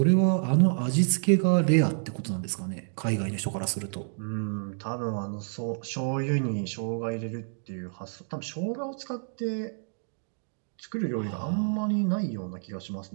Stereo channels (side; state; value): left; silent; digital silence